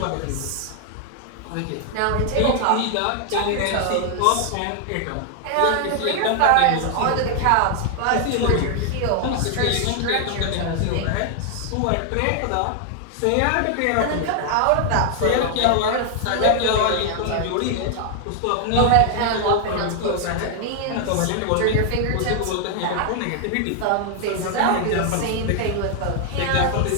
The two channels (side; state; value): both; different; correlation 0.00